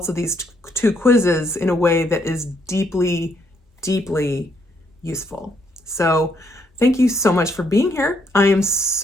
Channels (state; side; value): normal; both; correlation 0.72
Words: of these two quizzes in a way that is deeply, deeply useful. So thank you so much for being here. I am